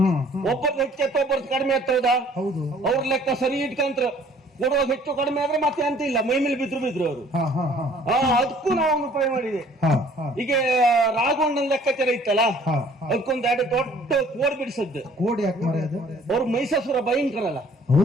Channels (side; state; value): both; normal; correlation 0.55